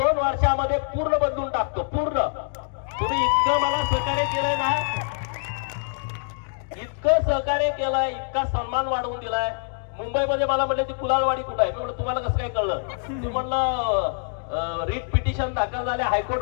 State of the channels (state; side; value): silent; right; digital silence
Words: वर्षामध्ये पूर्ण बदलून टाकतो. पूर्ण. तुम्ही इतकं मला सहकार्य केलंय ना, इतकं सहकार्य केलंय, इतका सन्मान वाढवून दिलाय. मुंबईमध्ये मला म्हणले ती कुलाळवाडी कुठं आहे? मी म्हणलं तुम्हाला कसं काय कळलं? ते म्हणलं रिट पिटिशन दाखल झाले